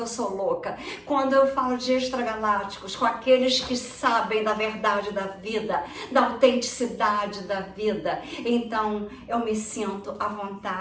eu sou louca. Quando eu falo de extragalácticos, com aqueles que sabem da verdade da vida, da autenticidade da vida, então eu me sinto à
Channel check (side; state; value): both; identical; correlation 1.00